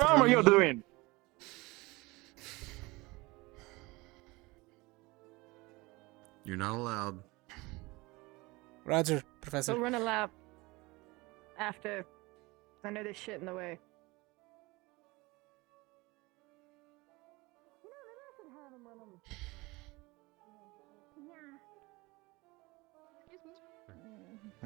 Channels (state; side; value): quieter; left; 23.0 dB